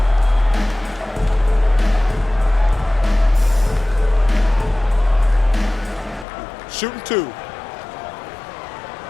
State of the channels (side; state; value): right; drops out; at 6.2 s